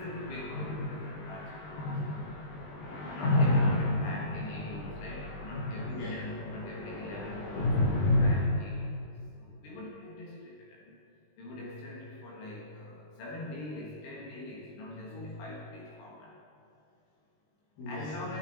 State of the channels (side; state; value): right; late; 20 ms